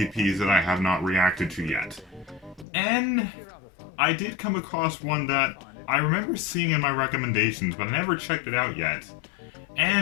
that I have not reacted to yet. And I did come across one that I remember seeing in my recommendations, but I never checked it out yet.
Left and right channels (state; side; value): drops out; right; at 2.7 s